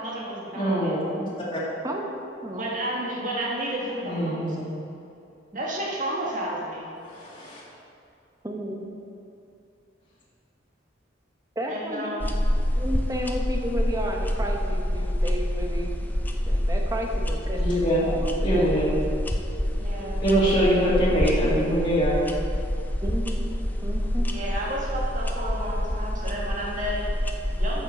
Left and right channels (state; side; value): normal; both; correlation 0.69